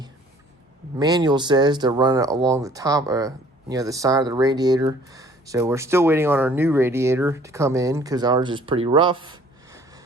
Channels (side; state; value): both; normal; correlation 0.55